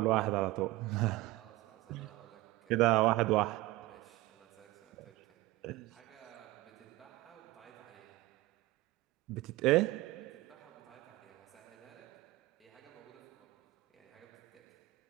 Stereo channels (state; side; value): quieter; left; 19.2 dB